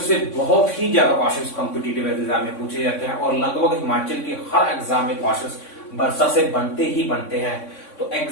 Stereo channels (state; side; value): late; right; 3.6 ms